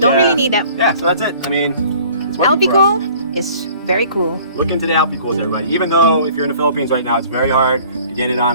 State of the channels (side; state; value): both; inverted; correlation -0.52